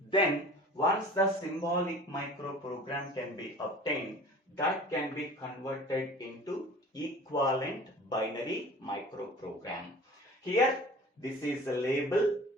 once the symbolic microprogram can be obtained, that can be converted into equivalent binary microprogram. Here this is a label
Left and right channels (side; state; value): both; normal; correlation 0.43